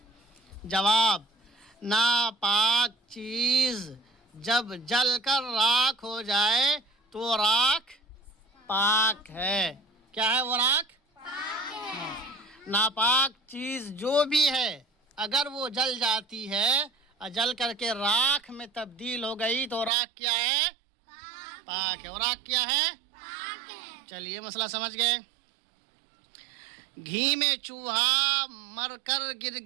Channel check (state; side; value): drops out; left; at 19.9 s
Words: جواب، ناپاک چیز جب جل کر راکھ ہو جائے تو راکھ پاک ہے۔ کیا ہے وہ راکھ؟ ناپاک چیز جو بھی ہے اگر وہ جل جاتی ہے اور جل کر کے راکھ میں تبدیل ہو گئی تو راکھ کیا ہے؟ پاک ہے۔ اور راکھ کیا ہے؟ چلیے مسئلہ سمجھ گئے۔ گھی میں چوہا مر کر گر